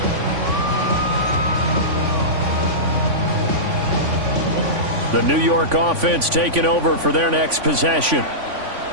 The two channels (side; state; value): left; late; 3.5 ms